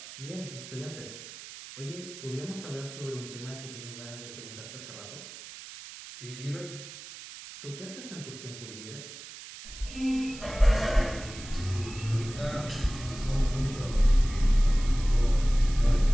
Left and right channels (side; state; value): right; noise; hiss, 14 dB below the sound